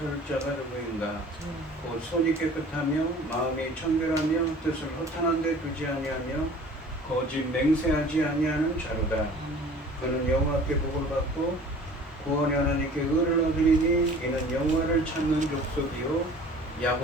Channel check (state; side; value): normal; both; correlation 0.46